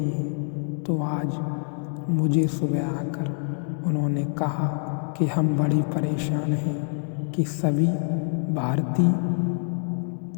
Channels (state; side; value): silent; right; 61 dB below the other